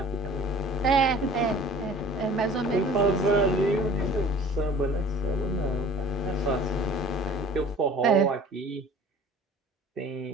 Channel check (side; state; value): both; normal; correlation 0.46